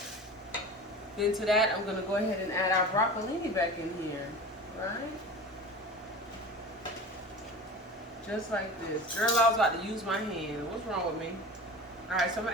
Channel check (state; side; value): normal; both; correlation 0.34